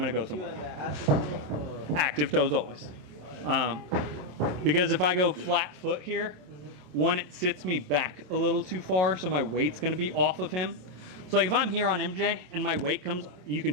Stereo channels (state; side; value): late; left; 27 ms